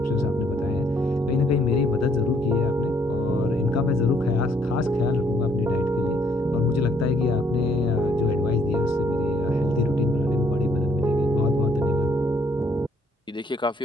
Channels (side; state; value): both; normal; correlation 0.67